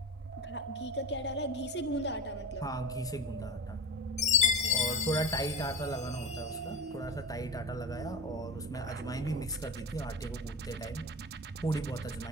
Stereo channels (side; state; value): both; normal; correlation 0.25